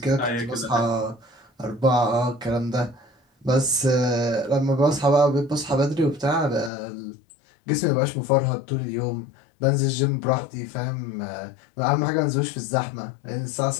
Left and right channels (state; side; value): drops out; right; at 6.7 s